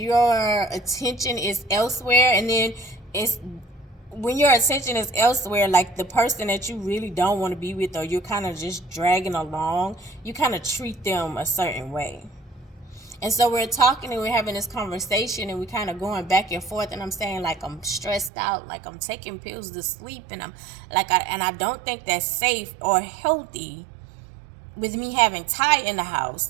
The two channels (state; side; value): drops out; left; at 18.3 s